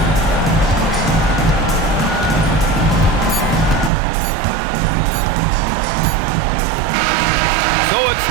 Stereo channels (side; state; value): left; drops out; at 3.9 s